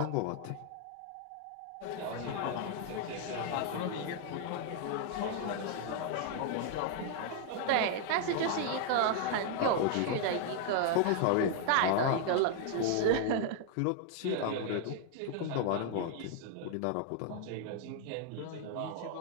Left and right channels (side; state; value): both; different; correlation 0.00